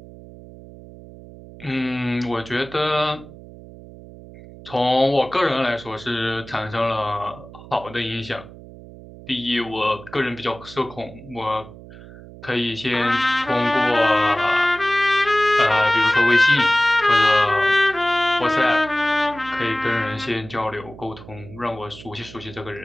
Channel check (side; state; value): right; noise; hum, 18 dB below the sound